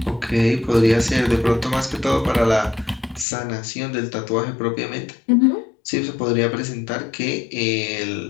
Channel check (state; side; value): drops out; right; at 3.2 s